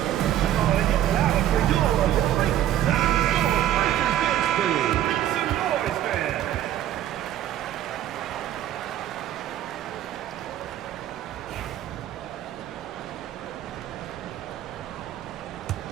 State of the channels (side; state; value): left; quieter; 12.0 dB